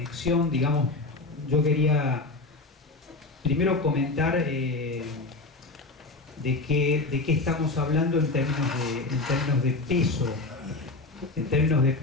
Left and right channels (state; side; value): quieter; right; 3.3 dB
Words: digamos, yo quería primero comentar de qué estamos hablando en términos de peso. En términos de